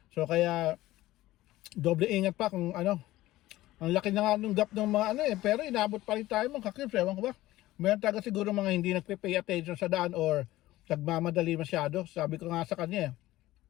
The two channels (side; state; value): right; quieter; 16.6 dB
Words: So kaya, doble ingat pa kung ang laki na nga nung gap ng mga pero inabot pa rin tayo mga cubes, ewan ko ba. Meron talaga siguro mga hindi nagpe-pay attention sa daan or nagmamadali masyado. Sabi ko nga sa kanya,